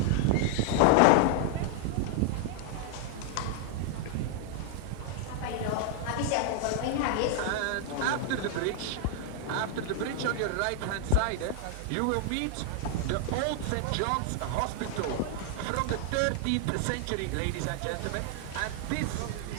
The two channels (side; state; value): both; different; correlation 0.00